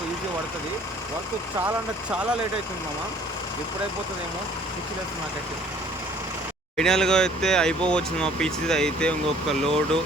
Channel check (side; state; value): both; normal; correlation 0.55